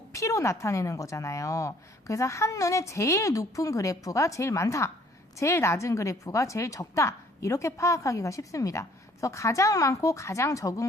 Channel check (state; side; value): normal; both; correlation 0.60